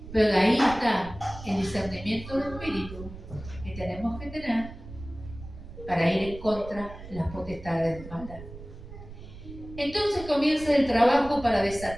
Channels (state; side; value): noise; right; rumble, 14 dB below the sound